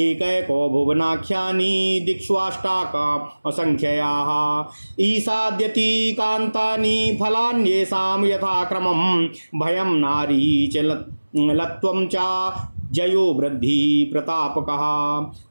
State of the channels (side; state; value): both; inverted; correlation -1.00